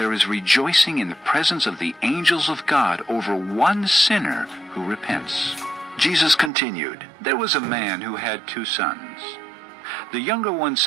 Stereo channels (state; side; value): drops out; left; at 6.5 s